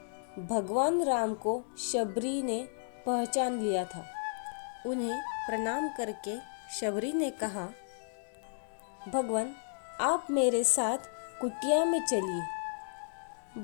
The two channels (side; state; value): right; silent; digital silence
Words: भगवान राम को शबरी ने पहचान लिया था। उन्हें प्रणाम करके शबरी ने कहा, भगवान, आप मेरे साथ कुटिया में चलिए।